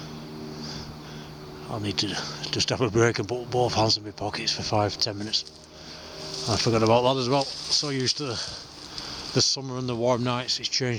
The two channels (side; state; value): both; identical; correlation 1.00